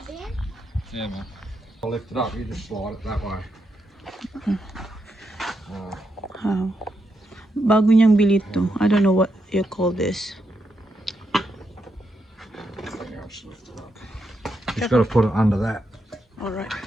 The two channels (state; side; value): normal; both; correlation 0.83